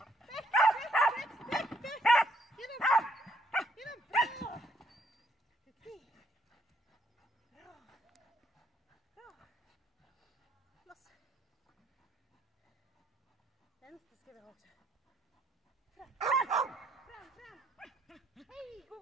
Hej! Go! Loss. Vänster ska vi ha också. Fram! Hej!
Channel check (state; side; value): normal; both; correlation 0.71